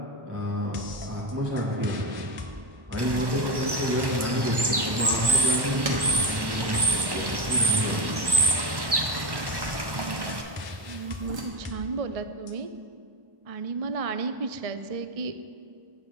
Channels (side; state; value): left; late; 1.1 ms